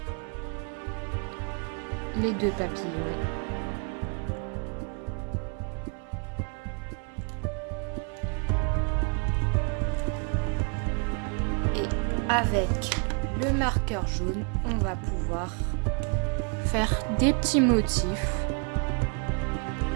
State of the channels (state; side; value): quieter; left; 37.0 dB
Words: les deux papillons. Et avec le marqueur jaune, on va pouvoir faire des petits motifs.